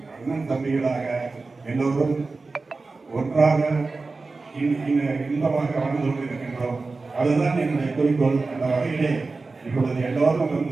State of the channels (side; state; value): left; quieter; 3.8 dB